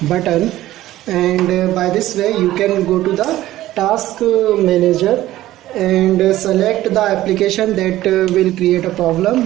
button, and by this way you can go to the task manager and select the application that will create a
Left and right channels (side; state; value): left; quieter; 15.0 dB